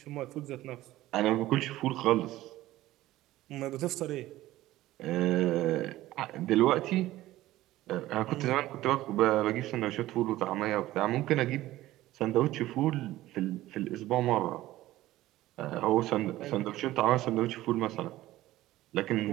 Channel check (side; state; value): left; quieter; 15.9 dB